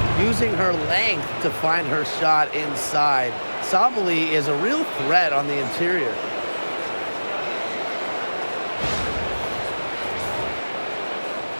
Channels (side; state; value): both; inverted; correlation -1.00